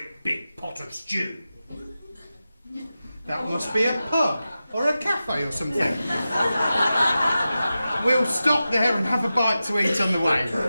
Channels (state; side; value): inverted; both; correlation -0.93